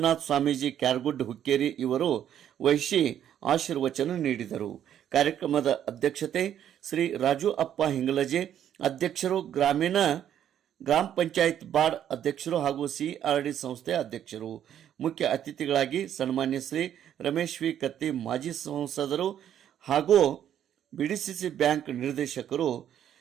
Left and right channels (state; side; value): quieter; left; 10.2 dB